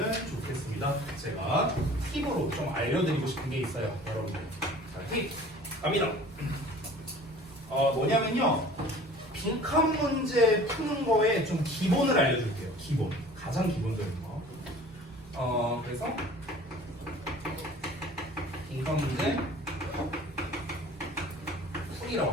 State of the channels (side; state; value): both; normal; correlation 0.46